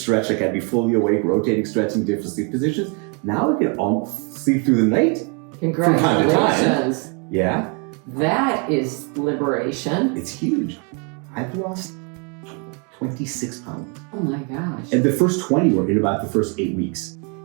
Like I'd be fully awake, rotating, stretching, different sleep positions. Now I can almost sleep through the night. Congratulations. From time to time. Yeah. That is liberation. It's huge. I've lost 26 pounds. Oh my gosh. And the first 20 were in about the first 8 weeks.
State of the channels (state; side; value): quieter; left; 35.4 dB